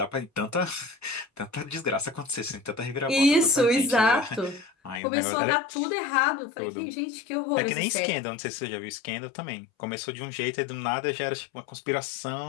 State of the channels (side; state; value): right; drops out; at 5.0 s